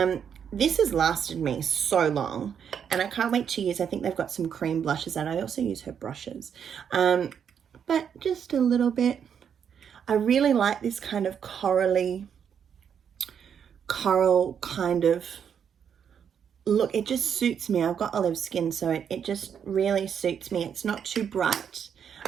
This has lasted me so long, and I can't wait to use. I think they've got some cream blushes, and I also use her brushes. But just a little bit. I really like this kind of coral kind of look. It just suits me. I've got olive skin, so it just really suits me. It's not too bright,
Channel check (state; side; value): quieter; left; 7.8 dB